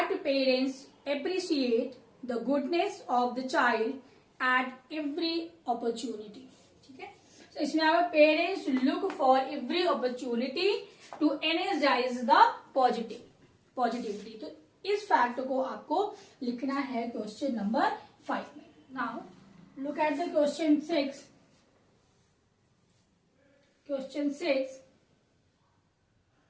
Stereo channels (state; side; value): identical; both; correlation 1.00